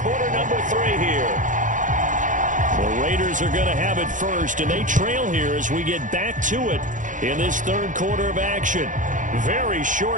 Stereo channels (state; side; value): late; left; 0.37 ms